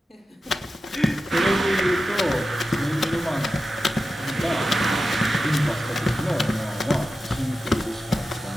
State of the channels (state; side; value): normal; both; correlation 0.92